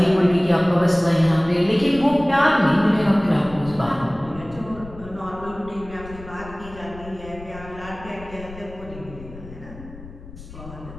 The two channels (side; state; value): left; noise; rumble, 16 dB below the sound